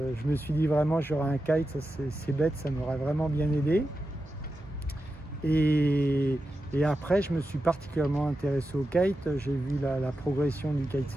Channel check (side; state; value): both; normal; correlation 0.90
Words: me suis dit vraiment j'aurais un kite, c'est bête, ça m'aurait vraiment bien aidé. Et après, je me suis particulièrement intéressé au kite. J'ai vu la progression du